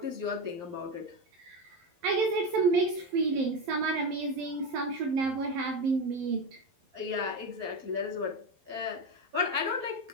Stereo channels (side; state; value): left; late; 11 ms